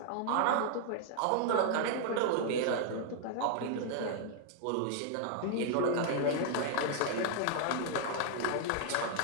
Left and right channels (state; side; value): different; both; correlation 0.00